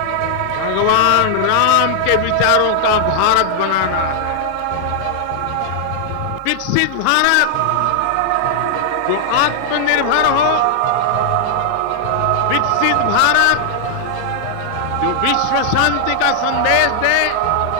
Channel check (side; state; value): both; different; correlation 0.00